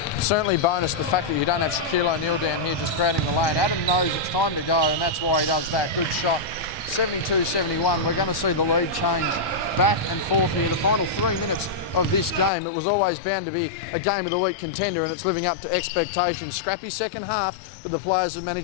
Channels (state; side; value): drops out; right; at 12.5 s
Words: Certainly bonus the fact that you don't have Shaquille O'Neal down here just crowding the lane. Adam knows it's time to go, and that's why he does that. Good shot. 72-71. We're going to see the lead change back and forth here. The final 3 minutes of this game, it was always bound to be a game of the week contender, and it's living up to expectations. Scrappy second half, but the players have